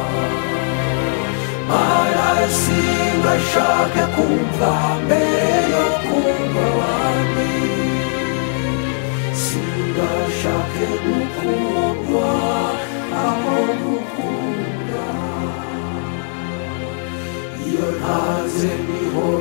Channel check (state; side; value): silent; right; 65 dB below the other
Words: Mana singashake kumva mbere yo kumva abandi, singashake gukundwa aho gukunda. Iyo ntaze niho